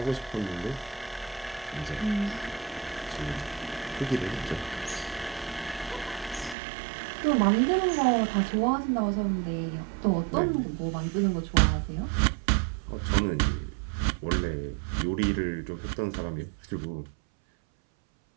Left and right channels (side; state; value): left; drops out; at 6.6 s